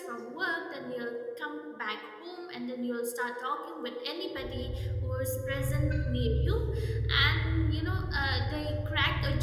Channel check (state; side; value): identical; both; correlation 1.00